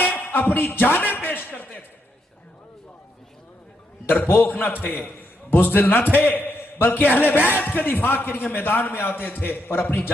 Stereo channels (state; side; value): normal; both; correlation 0.79